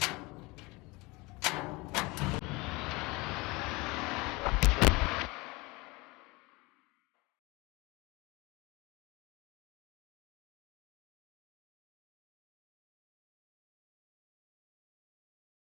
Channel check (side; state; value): right; quieter; 24.3 dB